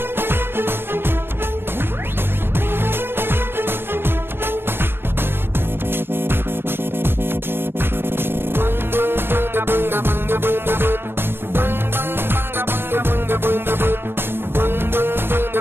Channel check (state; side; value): late; left; 0.11 ms